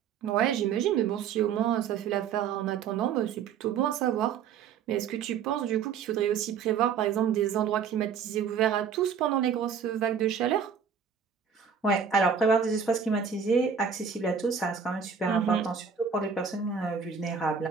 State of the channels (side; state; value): left; quieter; 6.8 dB